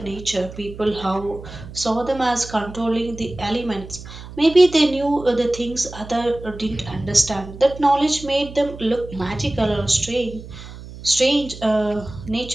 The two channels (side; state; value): right; noise; hum, 14 dB below the sound